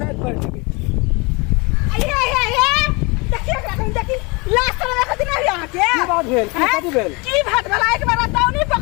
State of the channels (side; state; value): right; quieter; 27.9 dB